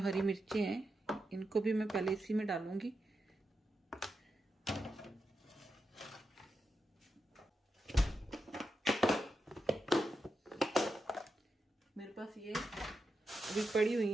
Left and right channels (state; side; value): normal; both; correlation 0.87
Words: मिर्चें हैं इनको भी मैं पहले इसी में डालूंगी। मेरे पास ये अभी पड़ी हुई